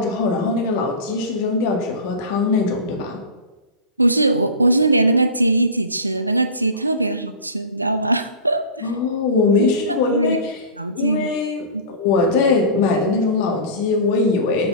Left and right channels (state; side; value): inverted; both; correlation -0.32